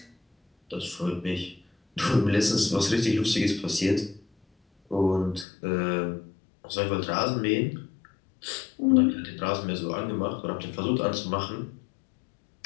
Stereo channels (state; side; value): drops out; right; at 5.5 s